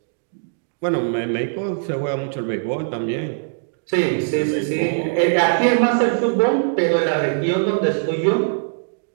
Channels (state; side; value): silent; left; digital silence